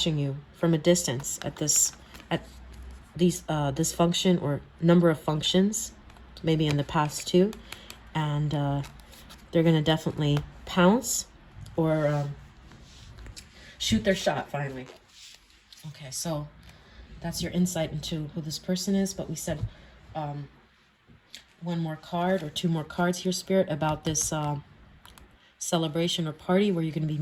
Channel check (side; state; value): both; identical; correlation 1.00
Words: you from a distance at this function or number of functions, maybe in the past too, and they're going to definitely pounce or shoot their shot finally. Okay, so that's your insight into who this person is, but we said one more card or 2 more cards here, Spirit, about this celebration or party where you're going to be